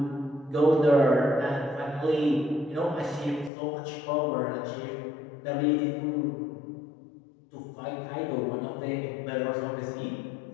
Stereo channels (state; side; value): drops out; right; at 3.5 s